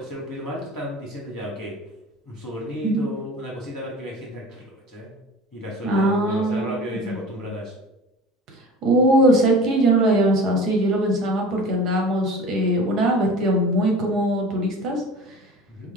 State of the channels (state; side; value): normal; both; correlation 0.39